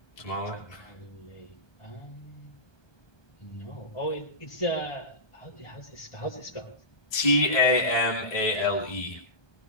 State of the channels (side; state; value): right; late; 1.2 ms